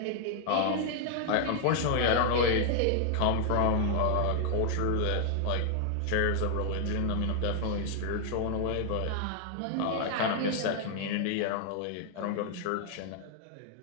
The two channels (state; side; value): different; both; correlation 0.00